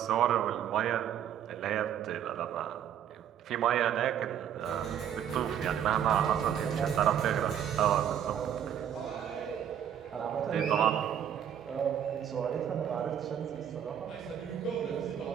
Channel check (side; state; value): left; quieter; 9.5 dB